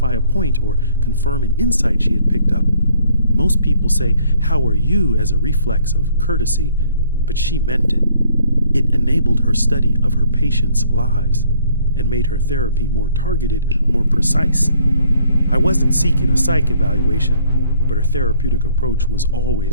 a point or confirm an insight she had picked up. Most people say, "How are you?" as a reflex of courtesy, but she meant it. It enabled her study of her patients' lives and made her therapy more targeted, more precise. I wasn't seeking a psych evaluation, but her therapeutic approach was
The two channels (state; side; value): inverted; both; correlation -0.63